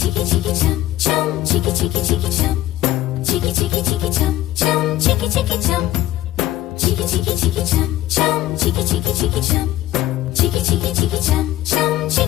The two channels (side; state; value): right; quieter; 14.7 dB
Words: chicky chicky chum chum, chicky chicky chicky chum, chicky chicky chicky chum chum, chicky chicky chum, chicky chicky chicky chum chum, chicky chicky chicky chum, chicky chicky chicky chum chum,